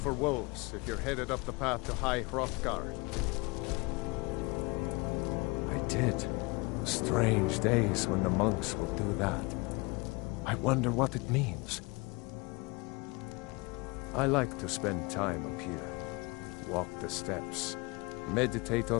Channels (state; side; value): quieter; right; 26.5 dB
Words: wolves if you're headed up the path to High Hrothgar. I did. Strange days when the monks will do that. I wonder what it means. I like to spend time up here. Walk the steps. Meditate